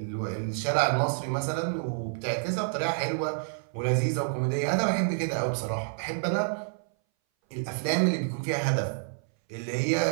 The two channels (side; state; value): left; silent; 59 dB below the other